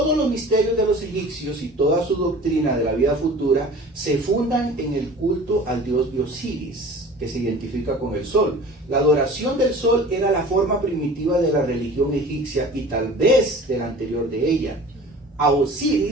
los misterios de los egipcios y toda su doctrina de la vida futura se fundan en el culto al dios de Osiris, que se identifica con el sol. La adoración del sol era la forma primitiva de la religión egipcia y tal vez de la anterior de ella. A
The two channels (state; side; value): normal; both; correlation 0.42